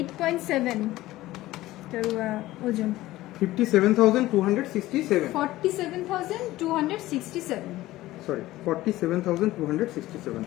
এটার ওজন 57,267। 47,267। সরি, 47,267।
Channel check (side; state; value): right; quieter; 16.7 dB